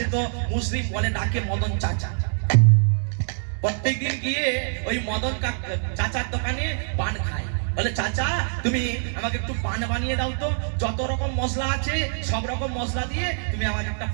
তো মুসলিম বলে ডাকে মদন চাচা। প্রত্যেকদিন গিয়ে ওই মদন চাচার দোকানে পান খায়। বলে চাচা তুমি আমাকে একটু পান বানিয়ে দাও তো, যত রকম মশলা আছে সব রকম মশলা দিয়ে তুমি আমাকে একটা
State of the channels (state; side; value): silent; left; digital silence